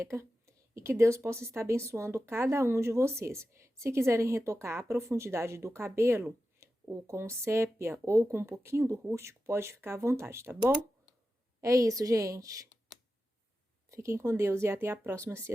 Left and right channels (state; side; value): normal; both; correlation 0.92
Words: E que Deus possa estar abençoando cada um de vocês. Se quiserem retocar a profundidade do cabelo, ou com sépia, ou com um pouquinho do rústico, pode ficar à vontade, tá bom? É isso, gente. Fiquem com Deus e até a próxima, se